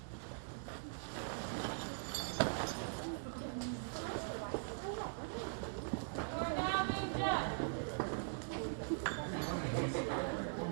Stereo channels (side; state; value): left; silent; digital silence